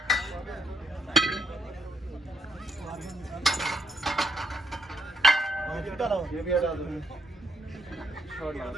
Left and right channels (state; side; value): normal; both; correlation 0.76